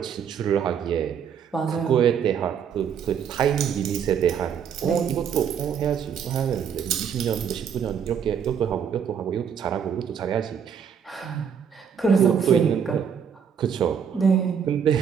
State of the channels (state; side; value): quieter; left; 7.6 dB